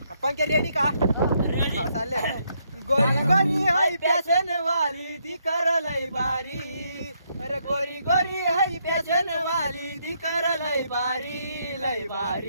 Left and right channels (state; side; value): inverted; both; correlation -0.75